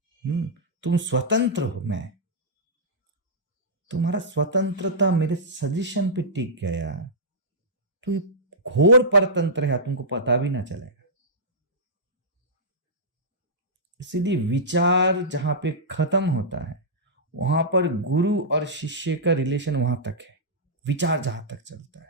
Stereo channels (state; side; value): normal; both; correlation -0.13